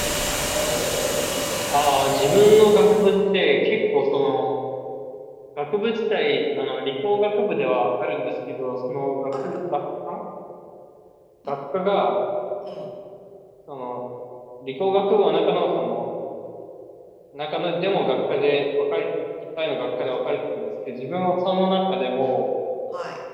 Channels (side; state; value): both; identical; correlation 1.00